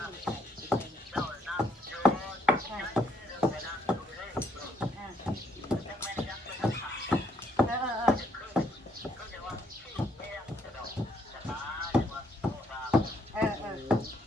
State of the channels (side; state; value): both; normal; correlation 0.71